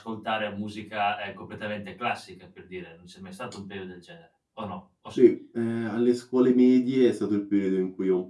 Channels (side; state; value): both; identical; correlation 1.00